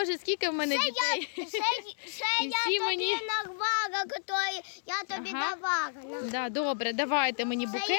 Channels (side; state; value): right; silent; digital silence